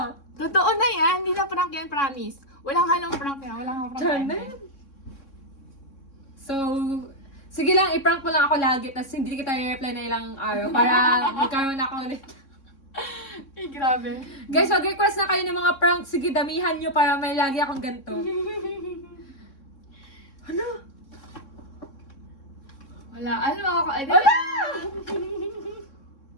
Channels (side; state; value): right; late; 3.6 ms